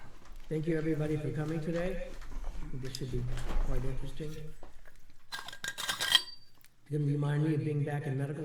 Thank you, everybody, for coming today. This should be quite interesting. Didn't remind me of being back in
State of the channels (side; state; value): both; identical; correlation 1.00